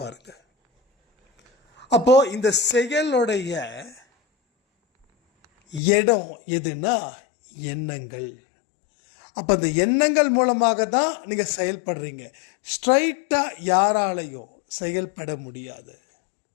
பாருங்க. அப்போது இந்த செயலுடைய இடம் எதுனா எண்ணங்கள். அப்போ அந்த எண்ணங்கள் மூலமாக தான் நீங்கள் செயல்படுறீங்க. ஸ்ட்ரைட்டாக யாராலையும் செயல்பட முடியாது,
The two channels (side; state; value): right; drops out; at 5.8 s